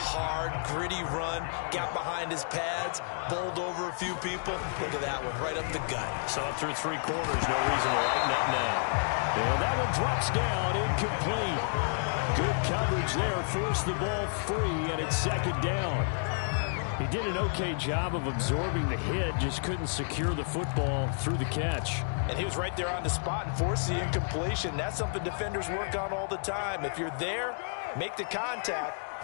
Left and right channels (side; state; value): right; silent; digital silence